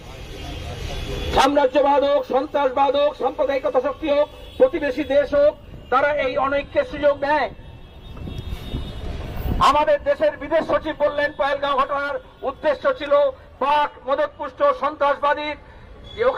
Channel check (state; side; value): identical; both; correlation 1.00